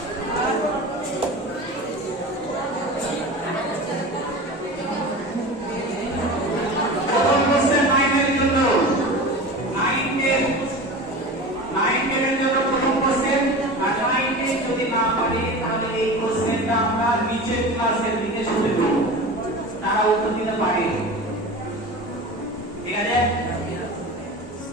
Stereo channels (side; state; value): both; normal; correlation 0.32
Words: প্রথম কোশ্চেন নাইনের জন্য নাইনের জন্য প্রথম কোশ্চেন আর নাইনে যদি না পারে তাহলে এই কোশ্চেনটা আমরা নিচের ক্লাসের দিকে শুনে দেব তারা উত্তর দিতে পারে ঠিক আছে